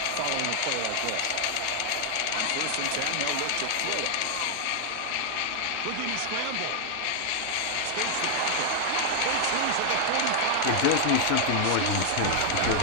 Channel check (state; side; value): different; both; correlation 0.00